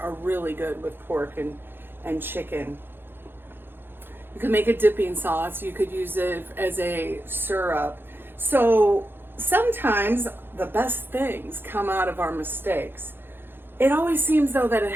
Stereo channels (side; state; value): left; late; 0.10 ms